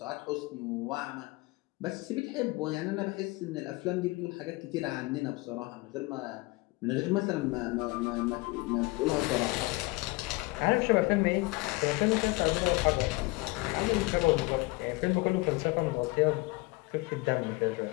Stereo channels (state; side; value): quieter; right; 23.5 dB